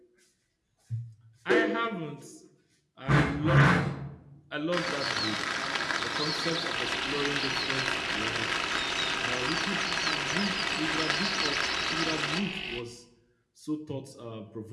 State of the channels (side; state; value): both; identical; correlation 1.00